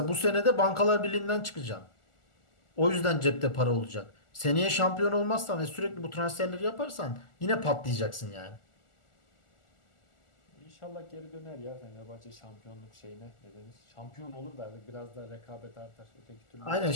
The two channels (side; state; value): right; late; 1.4 ms